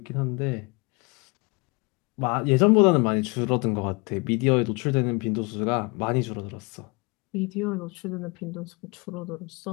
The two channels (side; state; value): right; quieter; 29.5 dB